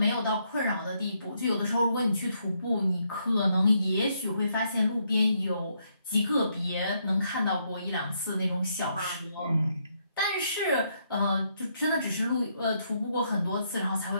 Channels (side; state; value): both; inverted; correlation -0.75